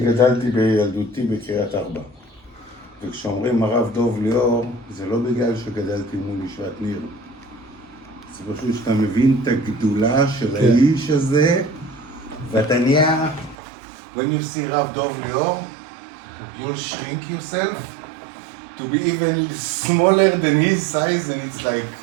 בילדותי בקריית ארבע. וכשאומרים הרב דוב ליאור, זה לא בגלל שגדלתי מול ישיבת ניר. זה פשוט שאתה מבין את הגדולה של האיש הזה, ואתה נהיה, when you see רב דוב ליאור, you'll shrink yourself to be even smaller than his size, and it's like,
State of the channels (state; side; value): drops out; left; at 13.6 s